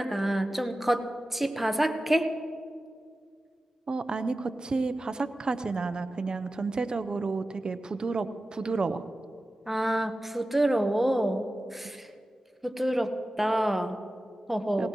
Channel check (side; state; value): both; normal; correlation 0.94